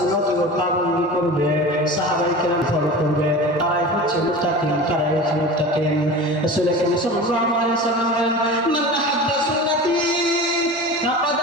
পালন করবে সাহাবায়ে কেরাম ফলো করবে তারাই হচ্ছে মুত্তাকিন তারাই হচ্ছে মুত্তাকিন রাসূল সাল্লাল্লাহু আলাইহি ওয়াসাল্লাম মান আহাব্বা সুন্নতি ফাকাদ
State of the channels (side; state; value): both; normal; correlation 0.33